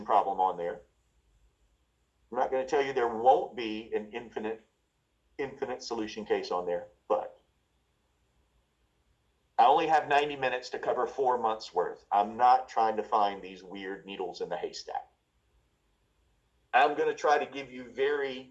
problem on there. I'm not going to tell you there won't be an infinite solution case on there, but I only have 90 minutes to cover 4 months worth. I'm not trying to find these weird needles in the haystack. I'm going to try to give you very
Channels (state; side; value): identical; both; correlation 1.00